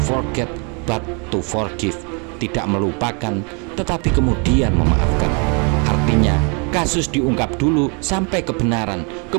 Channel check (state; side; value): quieter; left; 34.8 dB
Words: forget but to forgive, tidak melupakan tetapi kemudian memaafkan. Artinya kasus diungkap dulu sampai kebenaran,